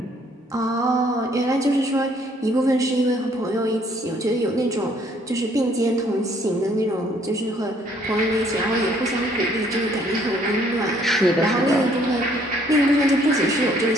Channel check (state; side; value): normal; both; correlation 0.63